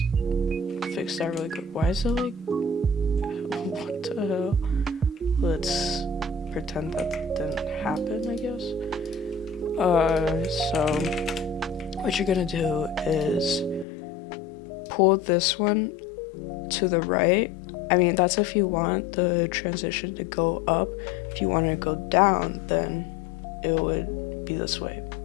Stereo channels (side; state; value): right; drops out; at 13.9 s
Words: fix that really quick. Why is it like, what the hell? Let's pretend that didn't happen, I guess. So what you're gonna do is pull this one to the right. I mean, that's if you want the transition to go up. If you want it to go down, then it would be this way.